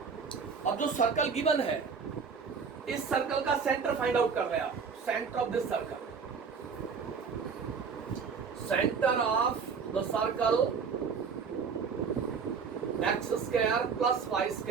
अब जो सर्कल गिवन है, इस सर्कल का सेंटर फाइंड आउट कर रहे हैं आप. Centre of this circle, centre of the circle x square plus y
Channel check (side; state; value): left; quieter; 5.7 dB